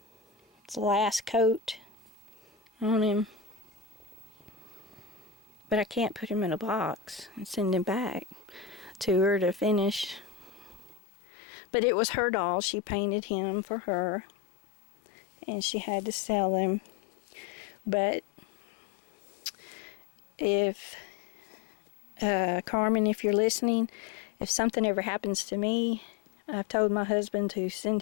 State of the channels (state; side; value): drops out; right; at 11.0 s